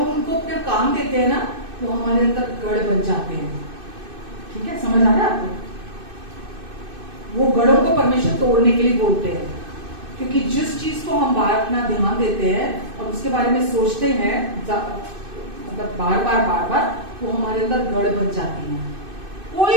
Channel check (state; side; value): late; left; 2.6 ms